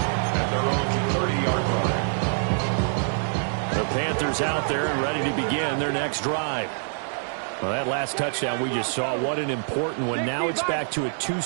at their own 30-yard line. The Panthers out there and ready to begin their next drive. Well, that last touchdown we just saw, what an important one. Now it's back to a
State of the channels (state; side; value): silent; left; digital silence